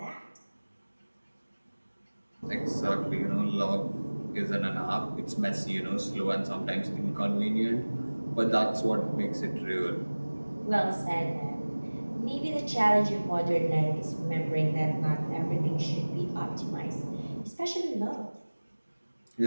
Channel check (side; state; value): both; inverted; correlation -1.00